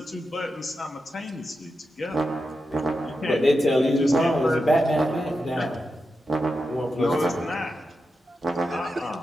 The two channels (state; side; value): normal; both; correlation 0.89